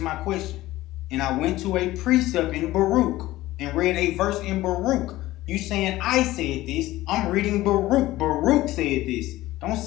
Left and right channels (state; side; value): quieter; right; 16.7 dB